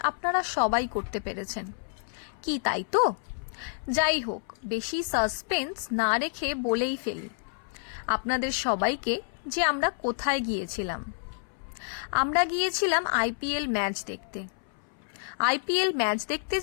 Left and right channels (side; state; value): right; silent; 59 dB below the other